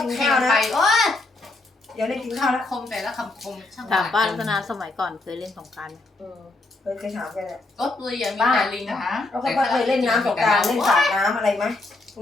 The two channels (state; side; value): quieter; right; 3.1 dB